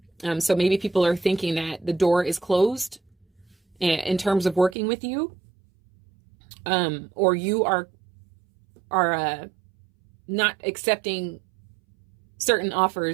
So maybe people are thinking that the door is closed in terms of working with you. or you are not accepting certain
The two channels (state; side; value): drops out; left; at 4.8 s